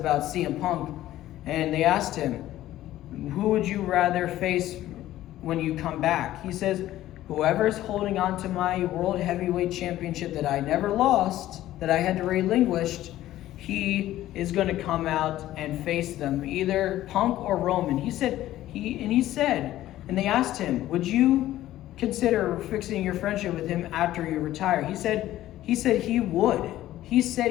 CM Punk, and they asked him, who would you rather face when you come back? He says, whoever's holding on to my World Heavyweight Championship that I never lost, that I had to relinquish, he is going to come out and face them, either Punk or Roman. He said, and they asked him, would you consider fixing your friendship with him after you retire? He said he would. He said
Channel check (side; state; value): right; quieter; 14.2 dB